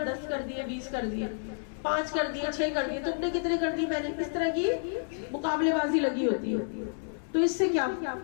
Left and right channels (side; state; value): right; silent; digital silence